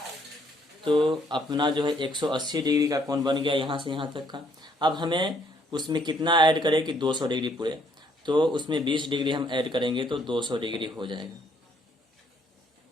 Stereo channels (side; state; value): both; normal; correlation 0.67